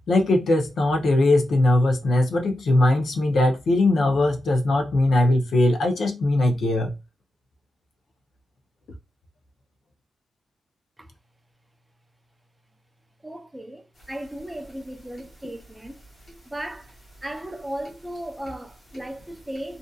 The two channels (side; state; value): both; normal; correlation 0.89